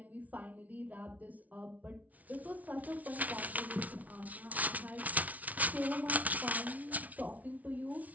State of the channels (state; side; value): late; left; 0.072 ms